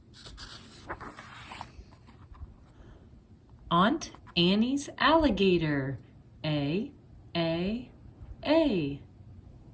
Aunt Annie's alligator. A.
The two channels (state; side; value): identical; both; correlation 1.00